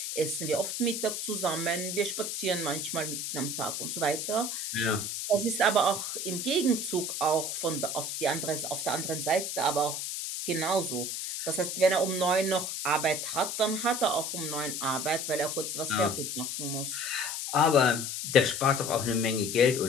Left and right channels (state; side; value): noise; left; hiss, 4 dB below the sound